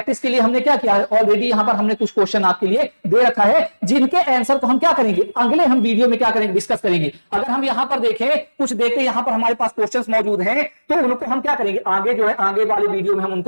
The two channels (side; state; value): both; inverted; correlation -1.00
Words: के लिए। हमने क्या किया है ऑलरेडी, यहां पर हमने कुछ क्वेश्चन आपके लिए दे रखा है, जिनके आंसर को हम क्या करेंगे अगले हम वीडियो में क्या करेंगे, डिस्कस करेंगे। अगर हम यहां पर देखें कुछ देखते यहां पर हमारे पास क्वेश्चंस मौजूद हैं, तो उनको हम क्या करेंगे आगे जो है आगे वाले वीडियो में हम